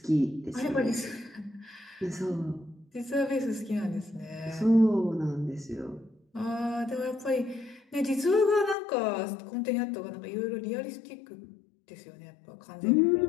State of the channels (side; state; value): right; drops out; at 8.8 s